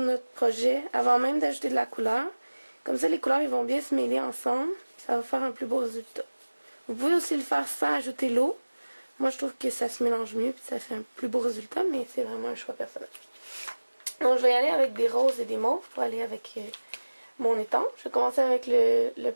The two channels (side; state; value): both; inverted; correlation -1.00